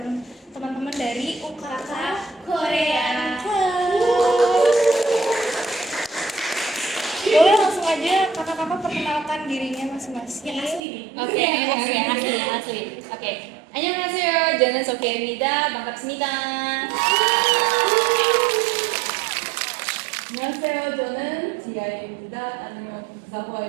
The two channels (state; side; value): drops out; left; at 10.8 s